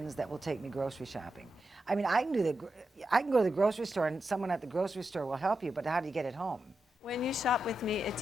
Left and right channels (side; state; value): both; normal; correlation 0.88